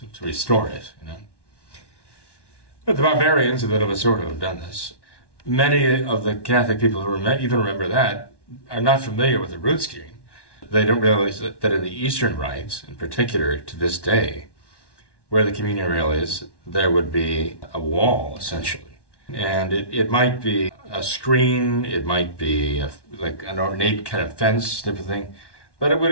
to restore it, you know. But the barbarians of the sort have done this. Many of the Catholic people who even remember that are not familiar with the rood screen. They don't realize that in the Eastern rites, in particular to this day, where the communion rail is, there would be a wall, essentially. And it might be a screen, it might be like an ornate kind of fence type of thing, but it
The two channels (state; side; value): late; right; 1.1 ms